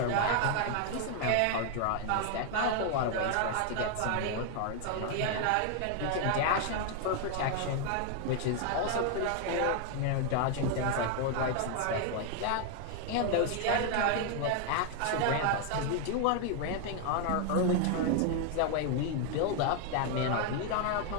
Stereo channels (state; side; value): different; both; correlation 0.00